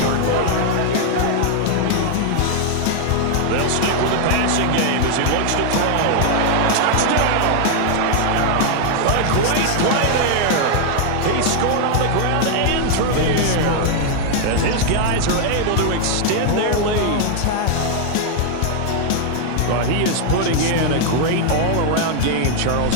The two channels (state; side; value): different; both; correlation 0.00